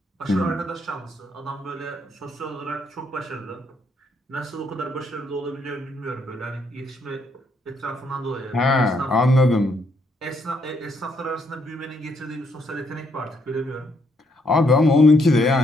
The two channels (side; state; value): both; normal; correlation 0.73